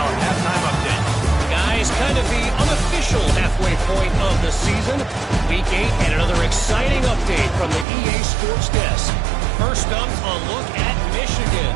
halftime update. Guys, kind of the unofficial halfway point of the season. Week 8 and another exciting update from the EA Sports Desk. First up, a look at Michigan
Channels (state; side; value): drops out; left; at 7.9 s